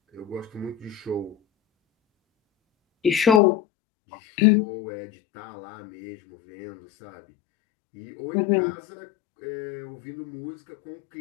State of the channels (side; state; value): right; drops out; at 3.4 s